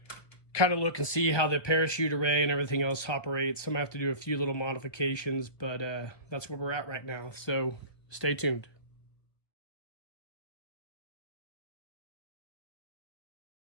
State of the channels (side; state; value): right; late; 1.1 ms